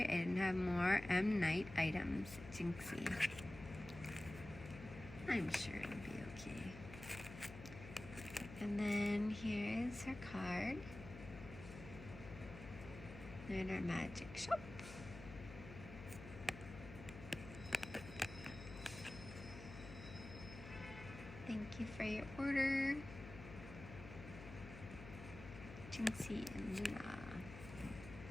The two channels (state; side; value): noise; left; hum, 13 dB below the sound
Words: I didn't have more M. Night items. Jinxie. I'm sure it'll be okay. And then here's her card. Lunar Magic Shop. Thank you for your order. Jinxie and Luna.